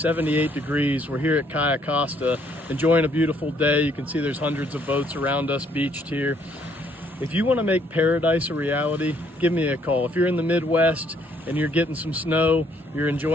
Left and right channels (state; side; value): normal; both; correlation 0.67